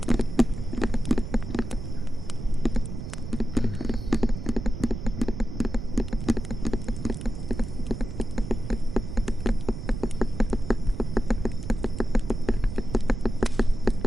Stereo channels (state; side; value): noise; right; rumble, 7 dB below the sound